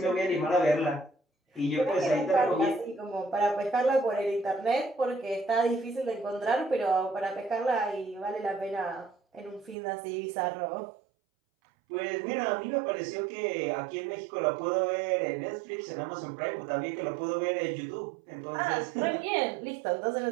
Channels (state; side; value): drops out; left; at 9.8 s